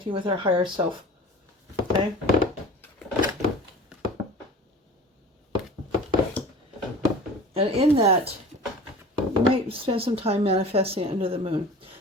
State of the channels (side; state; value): both; normal; correlation 0.40